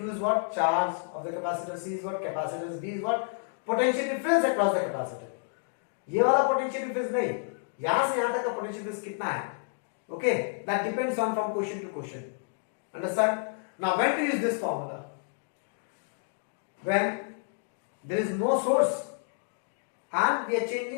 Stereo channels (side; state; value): right; silent; digital silence